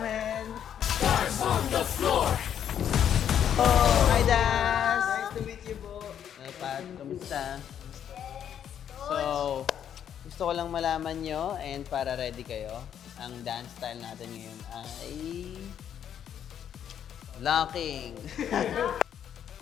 Oh! Hi, Dance! Nice to meet you po! Pat, kamusta? So, gusto ko lang malaman nyo and para ready kayo, ang dance style natin ngayon ay locking.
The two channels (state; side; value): quieter; right; 9.3 dB